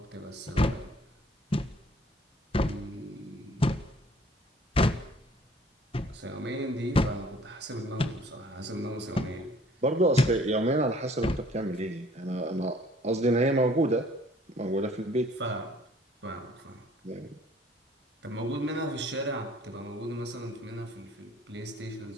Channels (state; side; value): normal; both; correlation 0.56